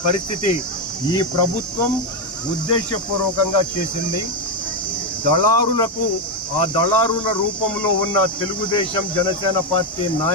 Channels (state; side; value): normal; both; correlation 0.06